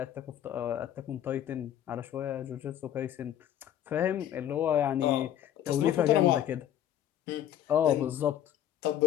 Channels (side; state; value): right; quieter; 11.0 dB